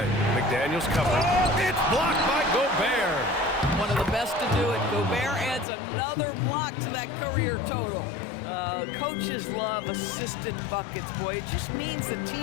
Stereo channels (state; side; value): drops out; right; at 5.7 s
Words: McDaniels covered. It's blocked by Gobert. One of the best to do it. Gobert adds another block to that career total. Coaches love assisted buckets, boy. It just means the